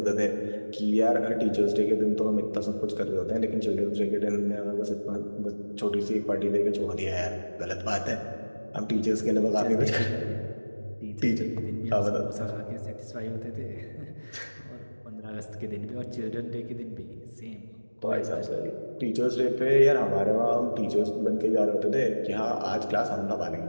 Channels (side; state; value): both; inverted; correlation -1.00